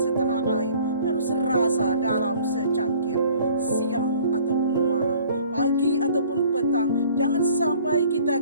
air harus serasa dalam secangkir. Siang ataupun malam, pagi ataupun petang, jangan sampai kita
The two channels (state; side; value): inverted; both; correlation -0.54